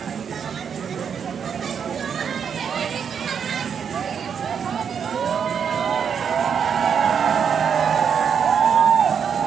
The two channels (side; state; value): left; quieter; 7.2 dB